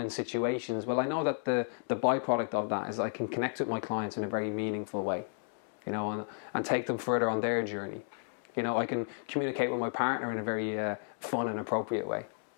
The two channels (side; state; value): right; silent; digital silence